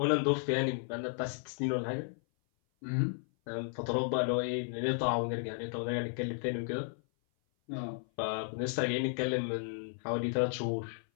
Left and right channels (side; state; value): right; silent; 55 dB below the other